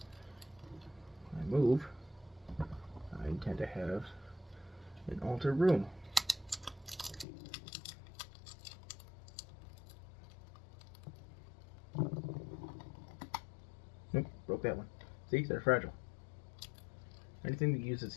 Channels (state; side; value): drops out; right; at 7.2 s